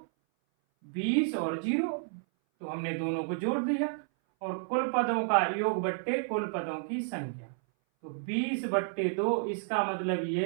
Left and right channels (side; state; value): left; silent; 57 dB below the other